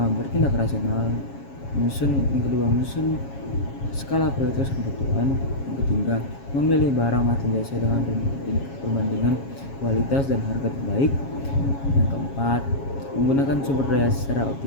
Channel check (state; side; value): late; right; 7.3 ms